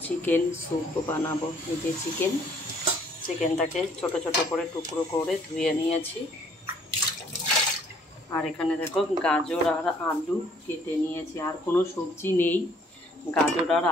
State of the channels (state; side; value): normal; both; correlation 0.61